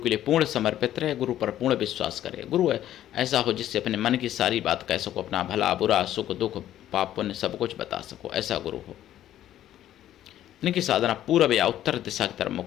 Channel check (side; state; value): right; quieter; 12.2 dB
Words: लिए पूर्ण समर्पित रहे, गुरु पर पूर्ण विश्वास करे। गुरु ऐसा हो जिससे अपने मन की सारी बात कह सको, अपना भला बुरा सुख दुख पाप पुण्य सब कुछ बता सको, ऐसा गुरु हो। इनकी साधना पूर्व या उत्तर दिशा की तरफ